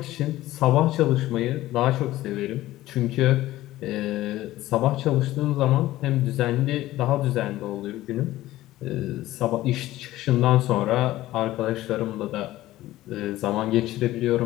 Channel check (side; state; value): right; quieter; 15.8 dB